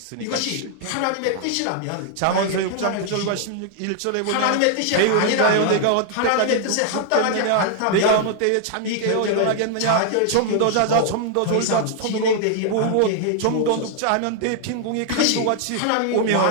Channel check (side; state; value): both; different; correlation 0.00